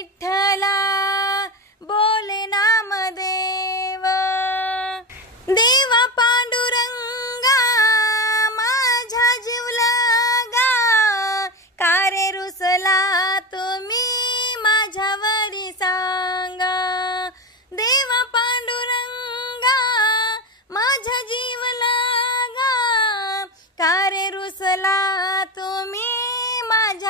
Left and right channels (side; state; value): both; normal; correlation 0.20